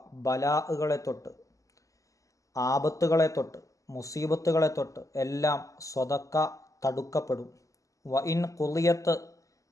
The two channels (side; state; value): right; late; 0.16 ms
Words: ബലാഅുകളെ തൊട്ട്, ആപത്തുകളെ തൊട്ട്, മുസീബത്തുകളെ തൊട്ട് എല്ലാം സ്വതക്ക തടുക്കപ്പെടും. വഇൻ ഖുളിയത്,